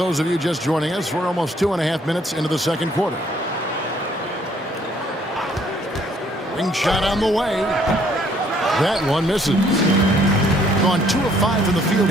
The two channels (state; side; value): normal; both; correlation 0.64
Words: of you just joining us, we're almost 2.5 minutes into the second quarter. Ring shot on the way. That one misses. Gone 2 of 5 from the field